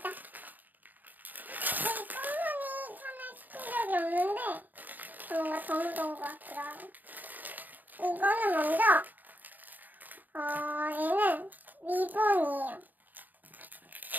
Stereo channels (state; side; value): late; left; 0.084 ms